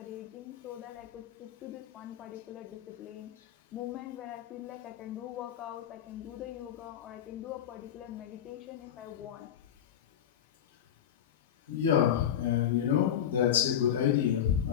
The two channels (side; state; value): right; quieter; 9.8 dB